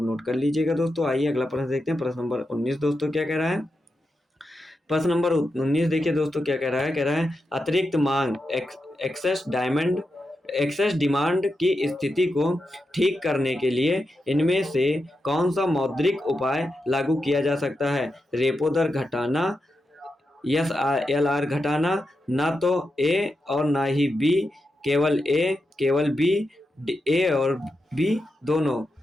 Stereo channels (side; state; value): both; normal; correlation 0.88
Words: नोट कर लीजिएगा दोस्तों। आइए अगला प्रश्न देखते हैं, प्रश्न नंबर 19 दोस्तों क्या कह रहा है। प्रश्न नंबर 19 देखिए दोस्तों क्या कह रहा है, कह रहा है अतिरिक्त मांग एक्सेस डिमांड की स्थिति को ठीक करने के लिए इनमें से कौन सा मौद्रिक उपाय लागू किया जा सकता है। रेपो दर घटाना, SLR घटाना, ना तो ए और ना ही बी, केवल ए केवल बी, ए और बी दोनों।